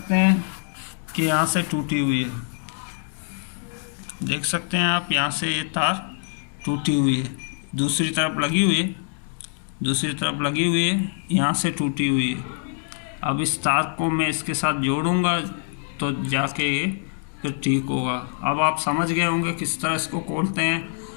हैं कि यहाँ से टूटी हुई है, देख सकते हैं आप यहाँ से ये तार टूटी हुई है। दूसरी तरफ लगी हुई है, दूसरी तरफ लगी हुई है, यहाँ से टूटी हुई है। अब इस तार को मैं इसके साथ जोड़ूंगा तो जाके ये फिर ठीक होगा। अब आप समझ गए होंगे किस तरह इसको खोलते हैं।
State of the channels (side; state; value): right; silent; 62 dB below the other